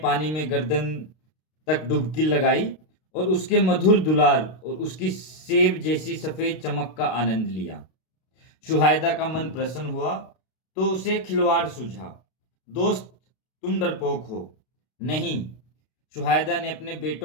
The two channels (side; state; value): right; late; 32 ms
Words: पानी में गर्दन तक डुबकी लगाई और उसके मधुर दुलार और उसकी सेब जैसी सफेद चमक का आनंद लिया। शुहायदा का मन प्रसन्न हुआ तो उसे खिलवाड़ सूझा। दोस्त, तुम डरपोक हो। नहीं। शुहायदा ने अपने